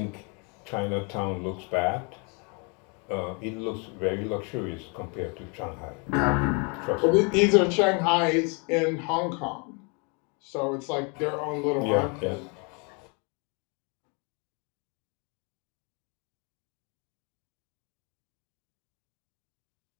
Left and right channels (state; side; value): quieter; right; 34.1 dB